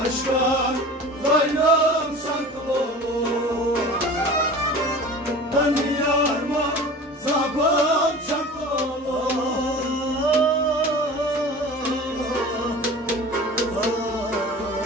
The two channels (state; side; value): normal; both; correlation 0.38